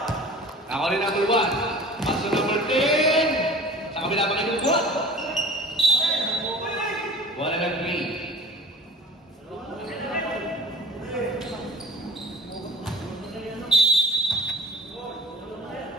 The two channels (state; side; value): normal; both; correlation 0.43